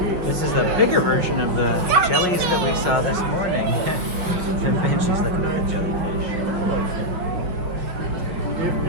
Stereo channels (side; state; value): left; late; 5.3 ms